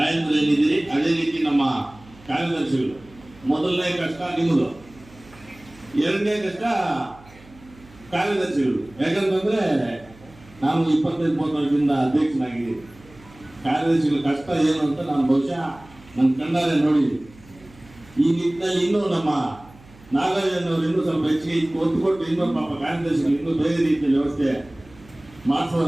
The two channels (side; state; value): right; noise; hum, 24 dB below the sound